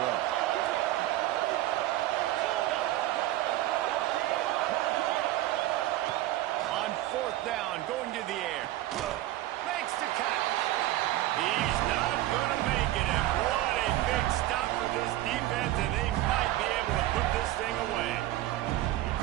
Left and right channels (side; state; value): left; quieter; 15.3 dB